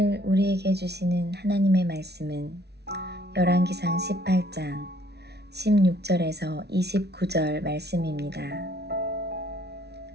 우리에게 주시는 하나님의 말씀은 열왕기상 18장 16절에서 29절 말씀입니다.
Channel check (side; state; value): left; late; 0.49 ms